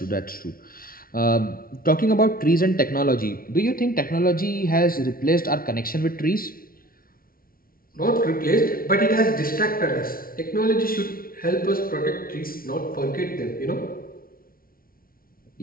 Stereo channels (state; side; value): late; right; 0.43 ms